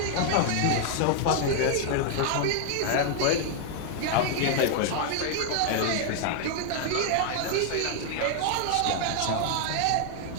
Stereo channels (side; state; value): both; different; correlation 0.00